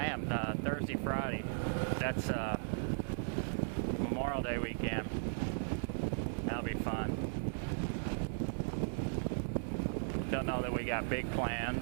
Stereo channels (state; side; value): silent; left; digital silence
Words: am. Thursday, Friday. That's Memorial Day weekend. That'll be fun. Don't know that we got big